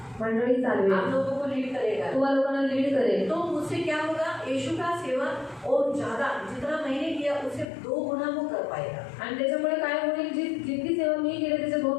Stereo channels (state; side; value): drops out; right; at 7.7 s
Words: मंडळी चालवेल, आप लोगों को लीड करेगा। तुम्हा लोकांना लीड करेल। तो उससे क्या होगा? यीशु का सेवा और ज्यादा जितना मैंने किया उससे 2 गुना वो कर पाएगा। आणि त्याच्यामुळे काय होईल, जितकी सेवा मी केली त्याच्या